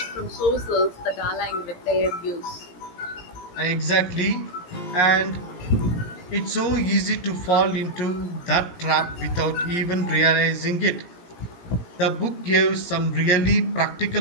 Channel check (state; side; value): late; right; 17 ms